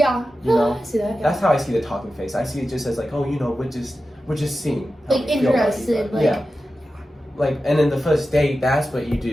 You know? I see that, yeah. That's how I see the talking phase. I see it just as like, oh, we're just seeing. Like, interested. Like, yeah. Like, and then the first date, that's what you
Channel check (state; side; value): normal; both; correlation 0.93